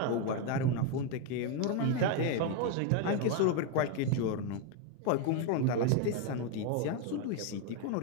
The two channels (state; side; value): different; both; correlation 0.01